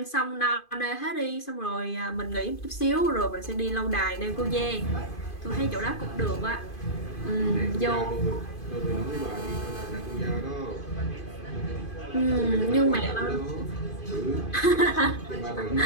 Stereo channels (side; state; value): right; late; 2.5 ms